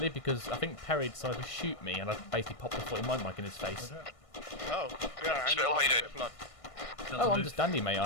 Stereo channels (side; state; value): right; late; 1.5 ms